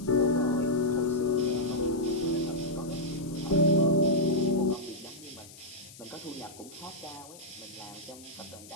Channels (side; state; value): left; noise; hiss, 19 dB below the sound